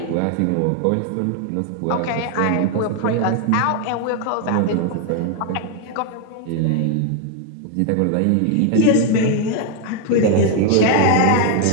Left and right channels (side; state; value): both; different; correlation 0.01